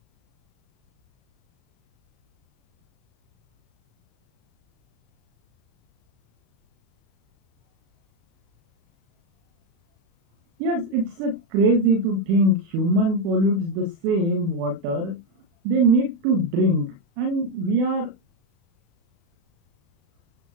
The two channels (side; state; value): left; late; 36 ms